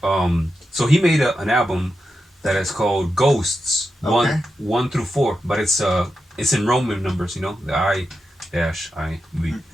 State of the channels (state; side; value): normal; both; correlation 0.88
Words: So he made an album that is called Ghosts, Okay. 1 through 4, but it's in Roman numbers, the I-V.